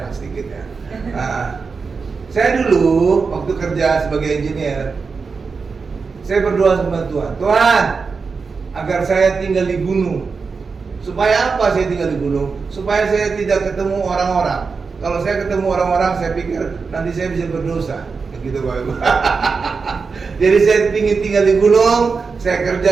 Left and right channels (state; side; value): quieter; left; 4.9 dB